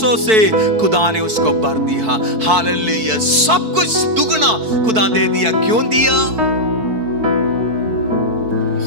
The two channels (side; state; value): left; late; 4.6 ms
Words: से खुदा ने उसको भर दिया. हालेलुया. सब कुछ दुगना खुदा दे दिया. क्यों दिया?